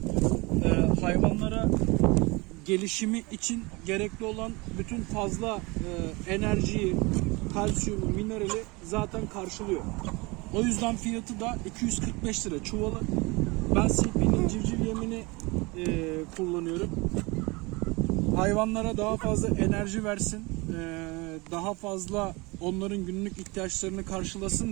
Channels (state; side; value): quieter; left; 25.5 dB